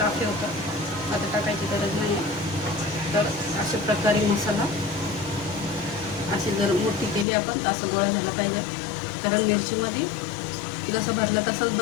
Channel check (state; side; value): drops out; right; at 7.2 s